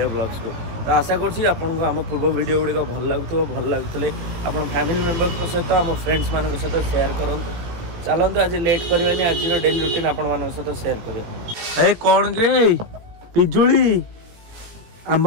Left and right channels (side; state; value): left; late; 18 ms